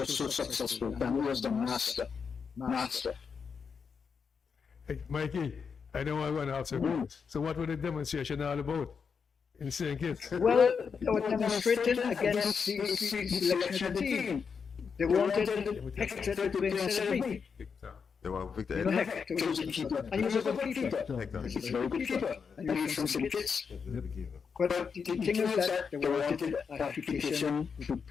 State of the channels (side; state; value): right; quieter; 6.0 dB